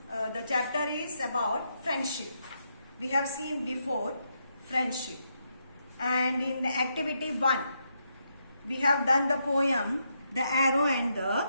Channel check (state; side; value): inverted; both; correlation -0.80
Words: chapter is about friendship. We have seen before friendship, and in the activity 1 we have done the poem The Arrow and